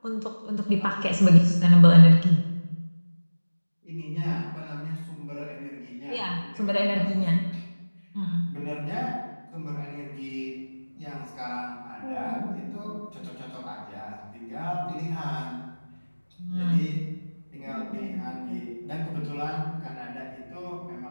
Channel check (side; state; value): both; inverted; correlation -1.00